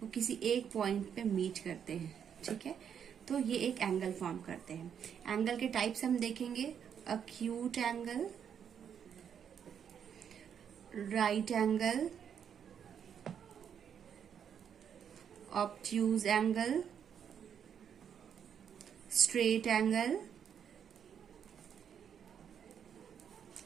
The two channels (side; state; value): left; quieter; 8.1 dB